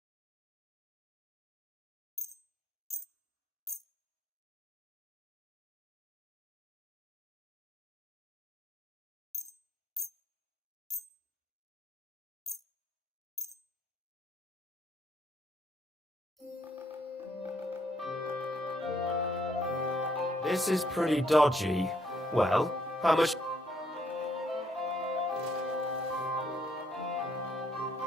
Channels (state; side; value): normal; both; correlation 0.69